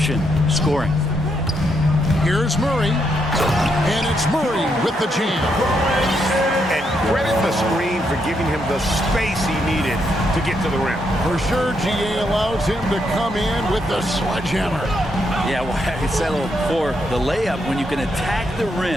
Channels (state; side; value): normal; both; correlation 0.78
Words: scoring. Here's Murray. And it's Murray with the jam. And credit the screen for giving him the space he needed to get to the rim. For sure, GA allows him to come in with the sledgehammer. Yeah, well, I settled for the layup when you can attack the